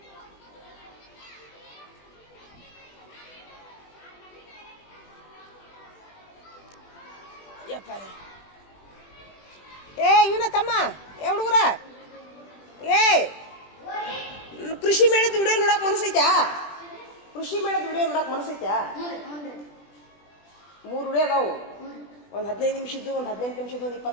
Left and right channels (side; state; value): right; late; 20 ms